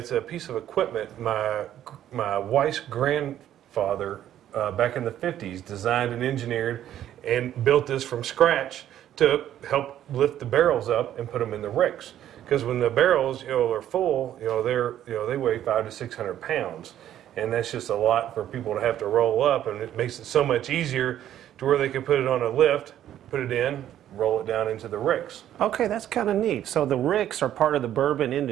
a piece of equipment my wife's grandfather back in the 50s designed and engineered and built this from scratch to help lift the barrels up and put them in the ricks. Because when the barrels are full, they weigh 500 to 600 pounds, and that's just a lot for people to have to roll up, and it makes it so much easier to where they can put it on a lift, put it in, roll it down into the ricks. Okay, that's kind of neat. So the ricks are part of the bourbon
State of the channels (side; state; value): left; quieter; 11.5 dB